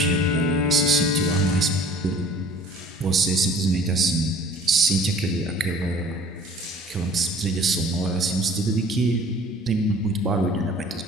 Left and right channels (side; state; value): both; normal; correlation 0.50